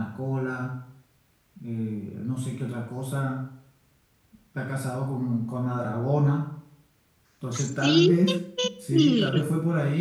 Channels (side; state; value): both; identical; correlation 1.00